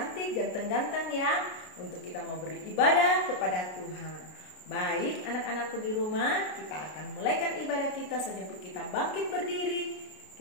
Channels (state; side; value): late; right; 33 ms